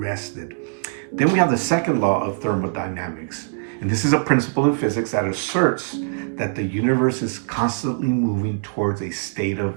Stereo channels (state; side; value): silent; left; digital silence